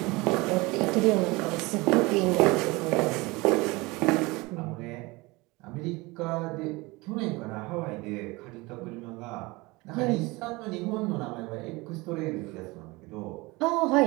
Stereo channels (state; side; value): quieter; left; 23.4 dB